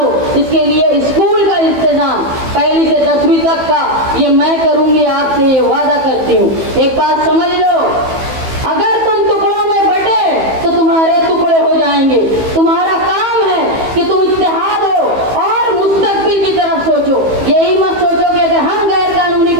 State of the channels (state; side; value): late; left; 15 ms